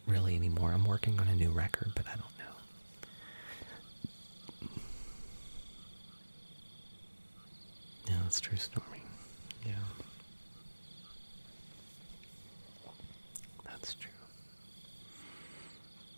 really anymore. I'm working on a new record, but I don't know. Yeah, that's true, Stormy. Yeah. That's true.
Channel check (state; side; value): inverted; both; correlation -1.00